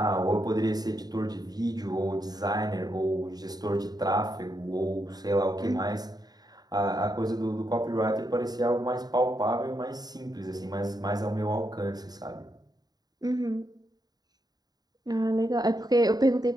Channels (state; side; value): late; left; 0.19 ms